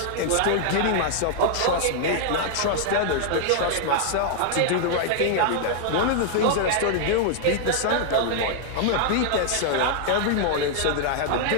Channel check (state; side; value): different; both; correlation 0.00